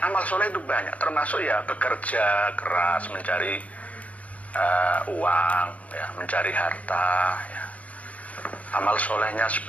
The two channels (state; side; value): late; right; 0.069 ms